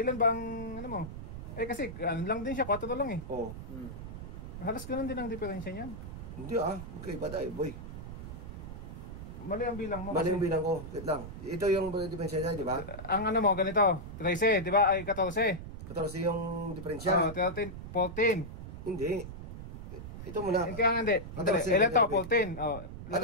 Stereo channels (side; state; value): right; noise; rumble, 10 dB below the sound